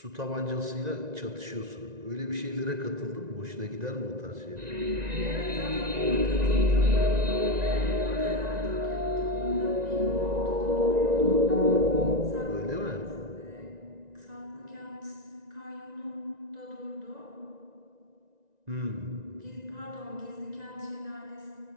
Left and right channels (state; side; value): late; left; 1.9 ms